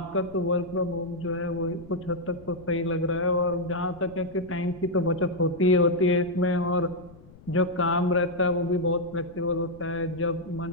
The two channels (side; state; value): left; noise; rumble, 21 dB below the sound